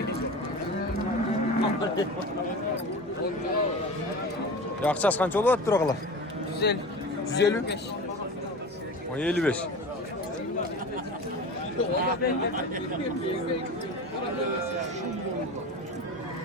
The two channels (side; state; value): both; normal; correlation 0.32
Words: Акчасы канча болуп атыптыр агала? 150? 55.